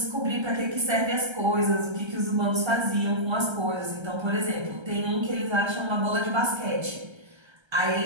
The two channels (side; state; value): left; late; 1.3 ms